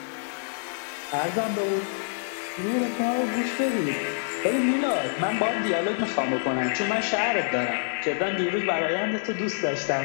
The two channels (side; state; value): right; silent; digital silence